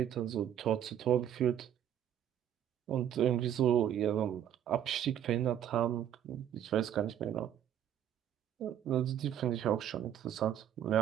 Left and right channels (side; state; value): left; quieter; 10.3 dB